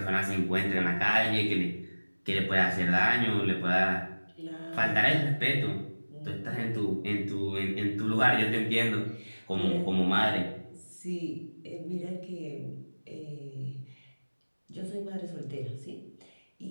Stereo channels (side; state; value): both; inverted; correlation -1.00